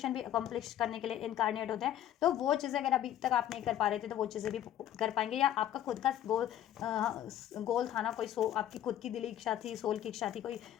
भी अकम्प्लिश करने के लिए इनकारनेट होते हैं। तो वो चीज़ें अगर अभी तक आप नहीं कर पा रहे थे तो वो चीज़ें भी कर पाएंगे, या आपका खुद का गोल था ना, कोई आपकी खुद की दिली इच्छा थी, सोल की इच्छा थी, कोई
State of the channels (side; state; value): right; quieter; 11.6 dB